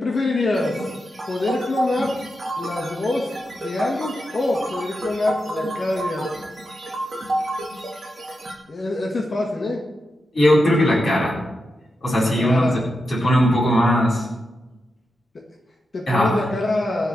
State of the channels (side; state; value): both; normal; correlation 0.88